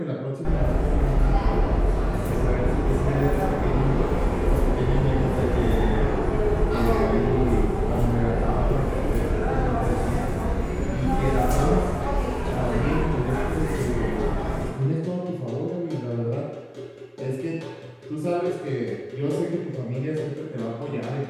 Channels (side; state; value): both; identical; correlation 1.00